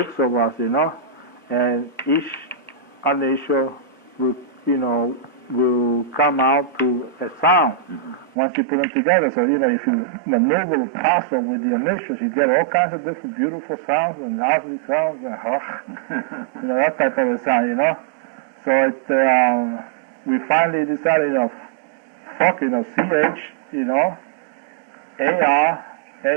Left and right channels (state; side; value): drops out; left; at 8.3 s